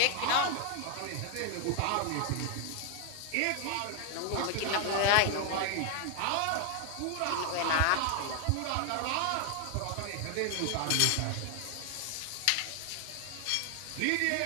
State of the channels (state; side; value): different; both; correlation 0.01